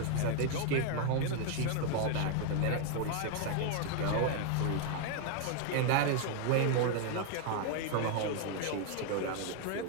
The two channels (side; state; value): both; different; correlation 0.01